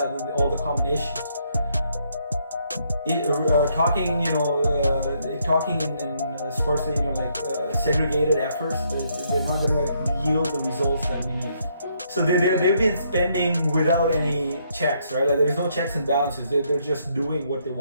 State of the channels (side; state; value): both; inverted; correlation -0.72